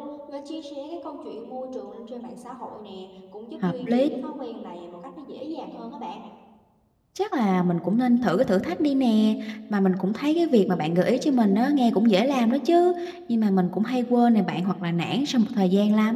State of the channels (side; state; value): both; identical; correlation 1.00